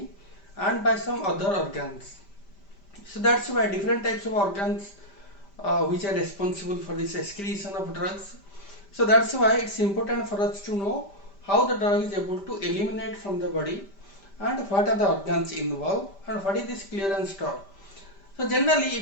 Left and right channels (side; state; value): right; late; 5.1 ms